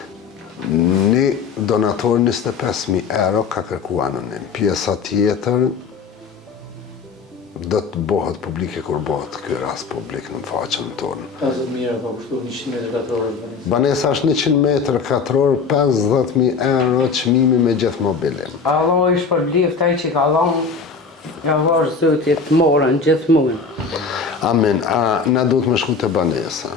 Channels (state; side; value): quieter; right; 5.1 dB